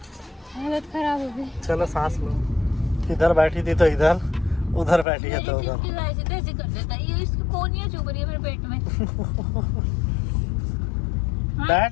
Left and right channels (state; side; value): drops out; right; at 5.1 s